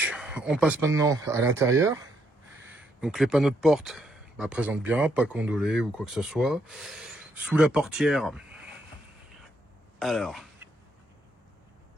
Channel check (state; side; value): normal; both; correlation 0.75